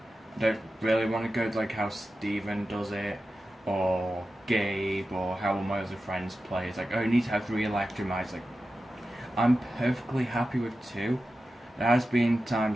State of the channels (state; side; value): normal; both; correlation 0.93